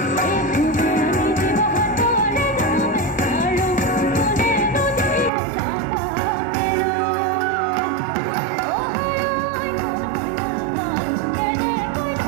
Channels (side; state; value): left; drops out; at 5.3 s